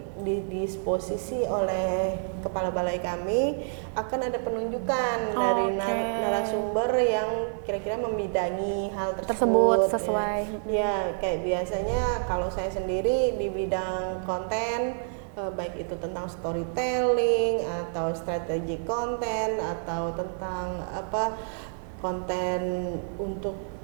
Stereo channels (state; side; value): silent; left; 56 dB below the other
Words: didisposisi oleh kepala balai kami akan ada penunjukan dari narasumber yang kira-kira membidangi hal tersebut sesuai. Ya, kayak biasanya kalau saya sendiri di bidang konten, baik itu tentang storytelling atau strategi konten atau tentang konten untuk